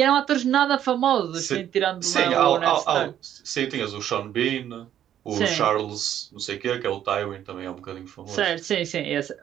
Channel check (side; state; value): left; quieter; 10.7 dB